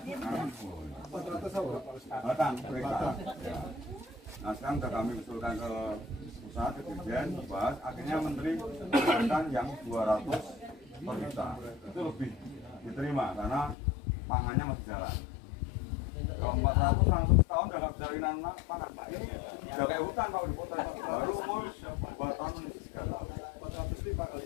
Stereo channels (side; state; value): right; drops out; at 13.8 s